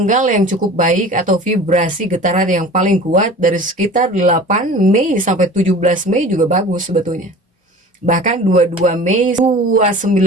yang cukup baik atau vibrasi getaran yang paling kuat dari sekitar 8 Mei sampai 17 Mei juga bagus sebetulnya. Bahkan 22 Mei,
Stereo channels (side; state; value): both; normal; correlation 0.40